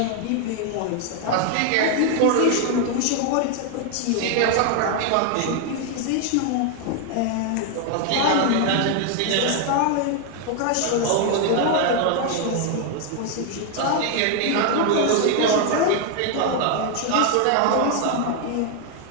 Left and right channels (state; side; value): different; both; correlation 0.00